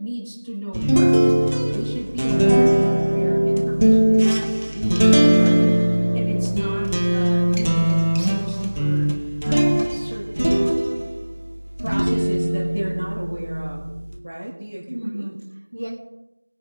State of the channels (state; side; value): inverted; both; correlation -1.00